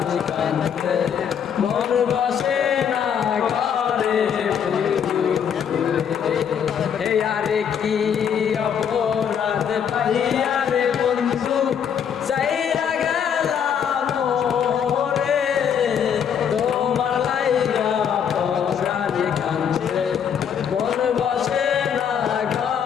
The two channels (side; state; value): right; quieter; 7.9 dB